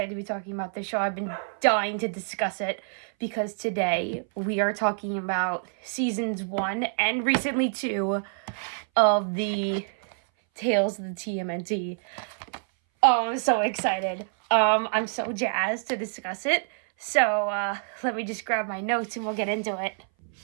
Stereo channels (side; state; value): left; silent; 58 dB below the other